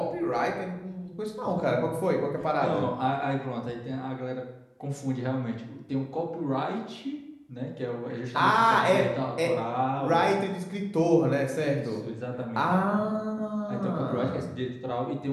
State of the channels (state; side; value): identical; both; correlation 1.00